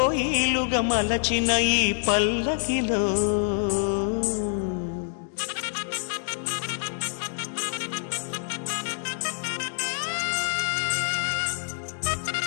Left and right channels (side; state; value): right; silent; 57 dB below the other